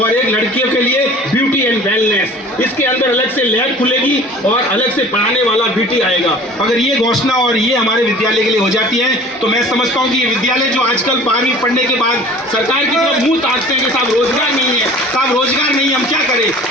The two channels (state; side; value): normal; both; correlation 0.45